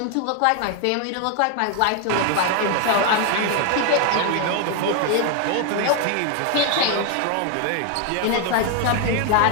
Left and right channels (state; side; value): different; both; correlation 0.01